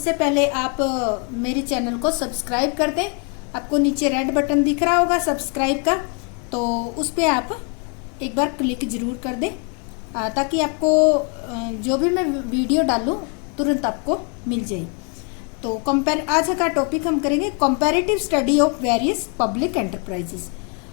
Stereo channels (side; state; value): right; quieter; 37.5 dB